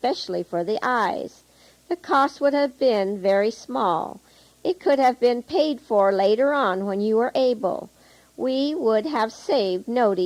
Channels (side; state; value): both; identical; correlation 1.00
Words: for the eyes. The cost would have been very small. It could have been paid for later on when you were able. We would have saved